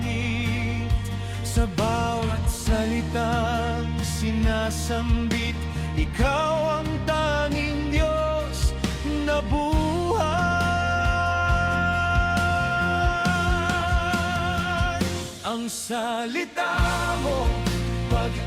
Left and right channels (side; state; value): both; identical; correlation 1.00